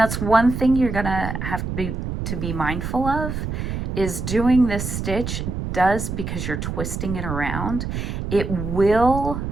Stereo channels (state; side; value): noise; right; rumble, 4 dB below the sound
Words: that's one thing you're gonna have to be mindful of, is doing this stitch does, because you're twisting it around, it will